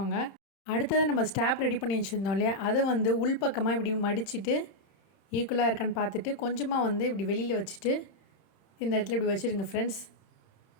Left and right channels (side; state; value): right; late; 31 ms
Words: அடுத்தது நம்ம ஸ்டாப் ரெடி பண்ணி வச்சுருந்தோம் இல்லையா, அதை உள்பக்கமாக இப்படி மடிச்சுட்டு ஈக்குவலாக இருக்கான்னு பார்த்துட்டு கொஞ்சமாக இப்படி வெளியில் வச்சுட்டு இந்த இடத்துல இப்படி வச்சுருங்க ஃப்ரெண்ட்ஸ்.